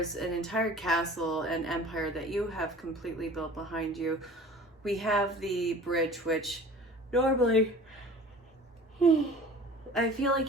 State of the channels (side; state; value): both; normal; correlation 0.44